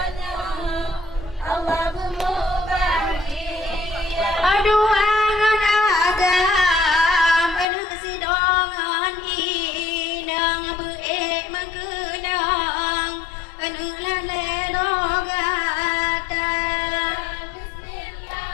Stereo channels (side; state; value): right; drops out; at 7.7 s